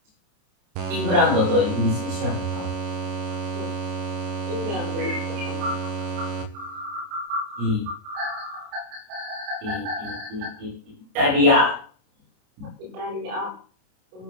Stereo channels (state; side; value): late; left; 29 ms